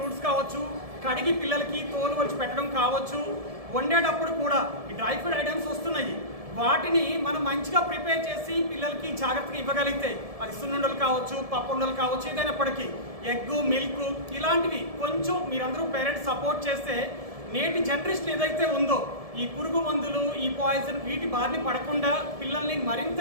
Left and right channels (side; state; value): left; late; 1.7 ms